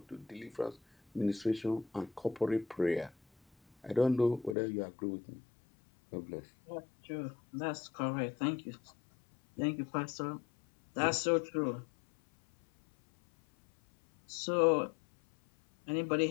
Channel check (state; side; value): drops out; right; at 4.5 s